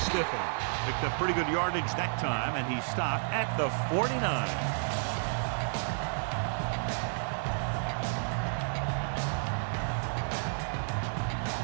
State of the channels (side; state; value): left; silent; digital silence